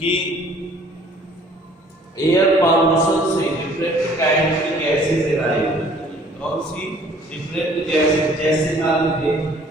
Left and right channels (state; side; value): normal; both; correlation 0.56